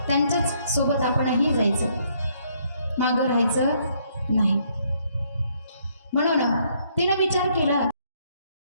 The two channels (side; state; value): both; inverted; correlation -0.69